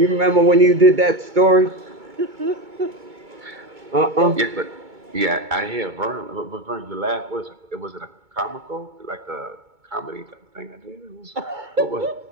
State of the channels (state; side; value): late; left; 2.2 ms